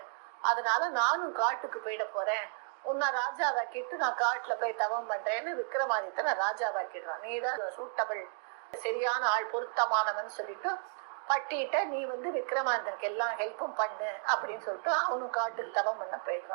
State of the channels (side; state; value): left; silent; 56 dB below the other